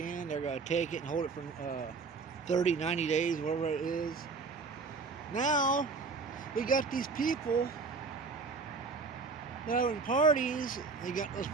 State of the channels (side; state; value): left; quieter; 4.4 dB